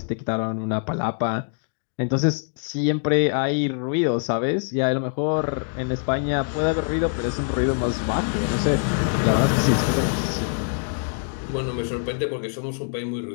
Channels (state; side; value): silent; right; digital silence